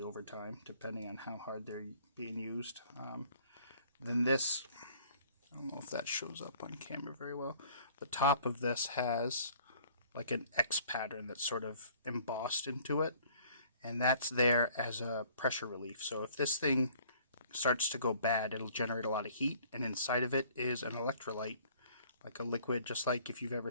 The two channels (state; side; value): inverted; both; correlation -0.55